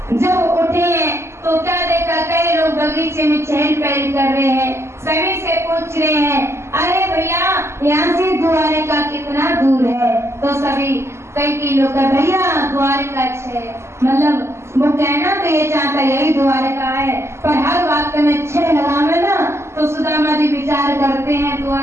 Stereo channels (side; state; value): left; late; 0.13 ms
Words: जब उठे हैं तो क्या देखा, कई लोग बगीचे में चहल पहल कर रहे हैं। सभी से पूछ रहे हैं, अरे भैया यहाँ से द्वारका कितना दूर है? तो सभी कई लोग का भैया द्वारका 6, मतलब वो कहना तो ये चाहता यही द्वारका है, पर हर बात में 6 लगावे ना। तो सुदामा जी विचार करते हैं